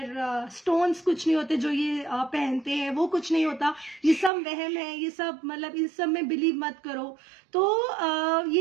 स्टोन्स कुछ नहीं होते, जो ये पहनते हैं वो कुछ नहीं होता, ये सब वहम है, ये सब मतलब इन सब में बिलीव मत करो। तो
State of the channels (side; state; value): left; drops out; at 4.3 s